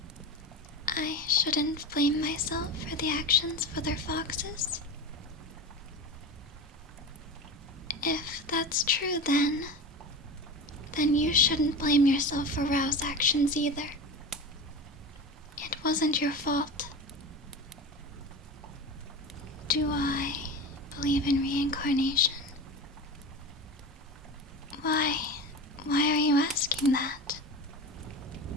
I shouldn't blame myself for the actions of other foxes. If that's true, then you shouldn't blame yourself for Rao's actions either. It wasn't your fault. Do I believe in reincarnation? Why are you asking that?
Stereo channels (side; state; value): both; normal; correlation 0.27